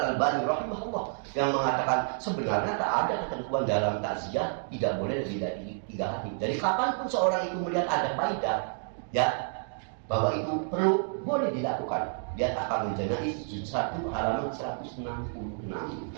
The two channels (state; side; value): silent; left; 58 dB below the other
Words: rahimahullah yang mengatakan sebenarnya tak ada ketentuan dalam takziah tidak boleh lebih dari 3 hari. Jadi kapanpun seorang itu melihat ada faedah ya bahwa itu perlu, boleh dilakukan. Dia akan menjenai juz 1 halaman 166.